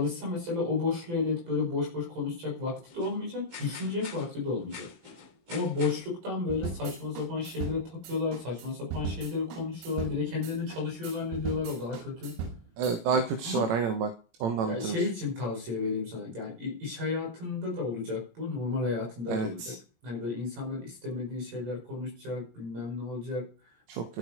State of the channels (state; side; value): late; left; 18 ms